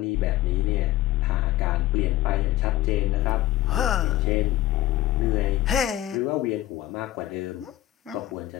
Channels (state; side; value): quieter; right; 14.8 dB